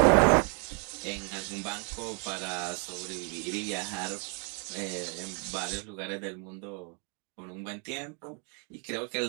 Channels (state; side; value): quieter; left; 38.0 dB